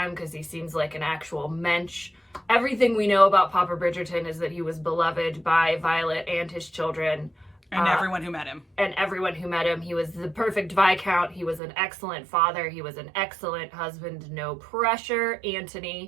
because he seems like an actual mensch. Everything we know about Papa Bridgerton is that he was beloved by Violet and his children. And everyone who met him. He was the perfect Viscount. He was an excellent father. He was an excellent husband. No pressure,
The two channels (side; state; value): left; drops out; at 11.6 s